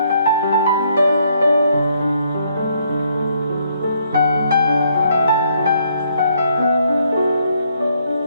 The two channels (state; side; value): inverted; both; correlation -0.71